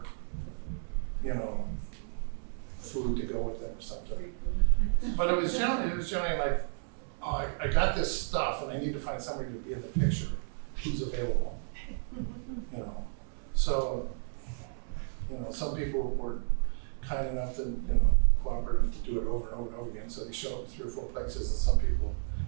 you know, food to go with them or something. But it was generally like, oh, I got this stuff and I need to find somebody to be in the picture who's available. You know, so, you know, some people were kind enough to, you know, cooperative to do it over and over and over again, so they show up 3 or 4 places, and some people,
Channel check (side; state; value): left; silent; 56 dB below the other